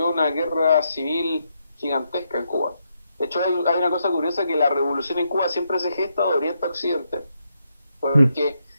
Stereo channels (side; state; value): both; inverted; correlation -0.80